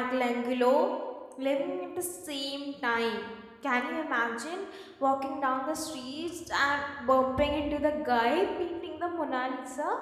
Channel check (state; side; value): identical; both; correlation 1.00